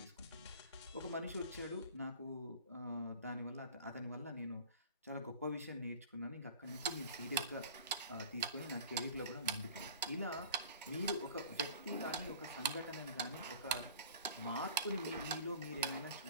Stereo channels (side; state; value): both; inverted; correlation -0.43